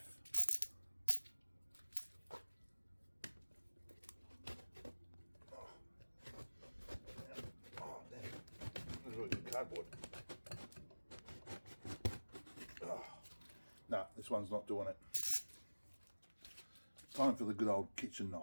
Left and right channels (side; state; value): both; inverted; correlation -1.00